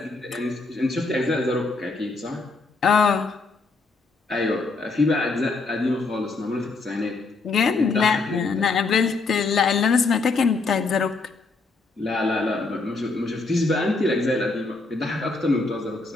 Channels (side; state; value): right; quieter; 3.8 dB